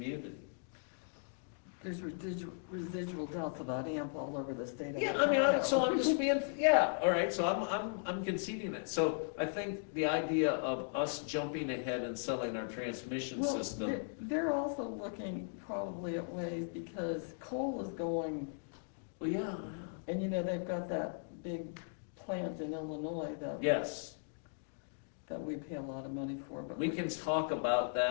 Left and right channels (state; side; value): silent; right; digital silence